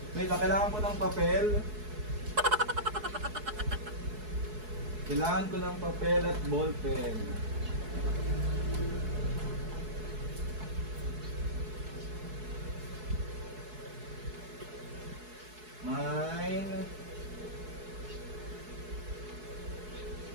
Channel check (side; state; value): left; late; 4.7 ms